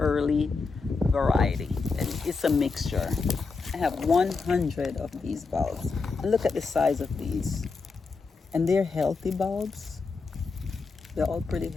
variety, and it's a mixture. I have 100 of these bulbs, and look at the size of these. And they're healthy bulbs. They're all pretty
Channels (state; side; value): quieter; right; 4.4 dB